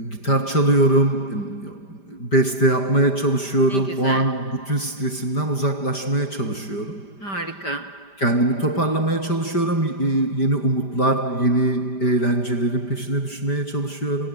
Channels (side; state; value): right; late; 5.1 ms